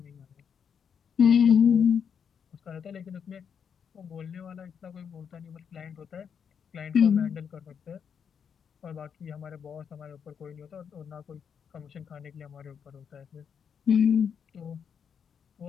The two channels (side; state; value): right; quieter; 7.2 dB